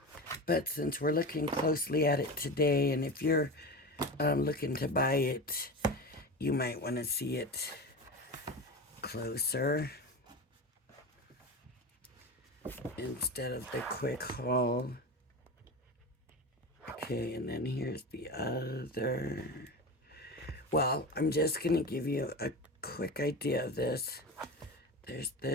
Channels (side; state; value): both; normal; correlation 0.26